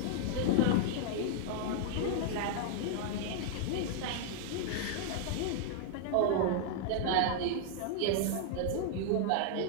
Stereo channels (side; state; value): both; different; correlation -0.01